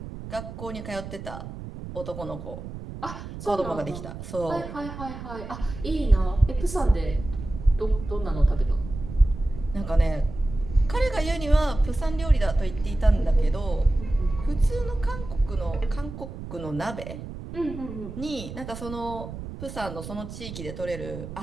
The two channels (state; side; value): noise; right; rumble, 10 dB below the sound